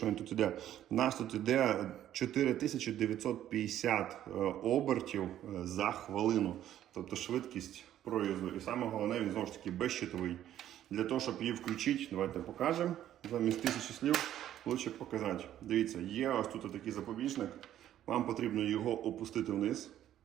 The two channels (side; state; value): left; quieter; 11.8 dB